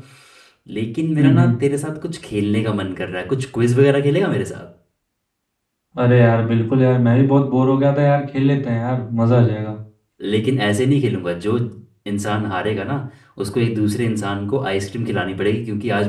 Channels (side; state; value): both; identical; correlation 1.00